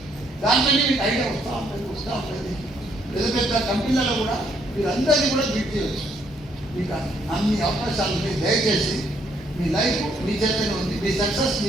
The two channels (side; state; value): both; normal; correlation 0.70